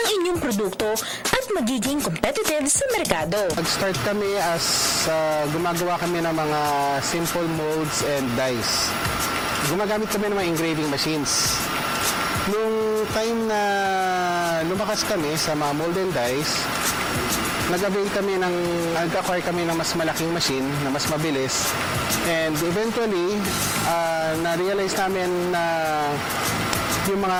inyong produkto at magiging competitive sa merkado. Nag-start kami as gumagawa kami ng mga simple molds and dies. Gumagamit kami ng mga engraving machines. Nung time na lumakas kami sa mga mold and dies, nag-acquire kami ng mas malaking machine na mas mabilis. And eventually, na-realize namin na yung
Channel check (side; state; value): both; identical; correlation 1.00